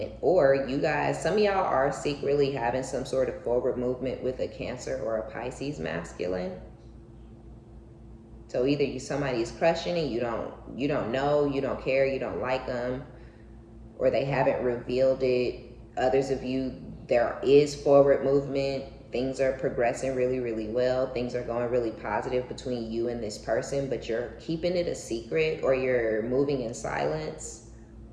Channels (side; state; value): both; identical; correlation 1.00